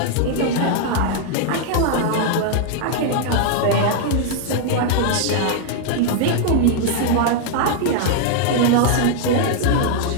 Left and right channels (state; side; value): different; both; correlation 0.00